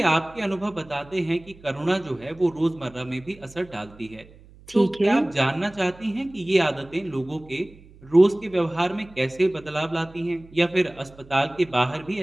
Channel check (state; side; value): noise; right; hum, 23 dB below the sound